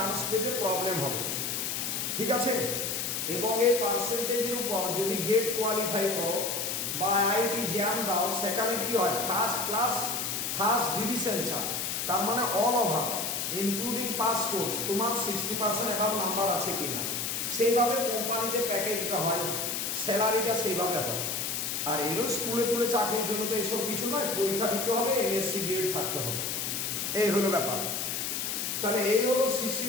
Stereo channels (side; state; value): left; noise; hiss, 2 dB below the sound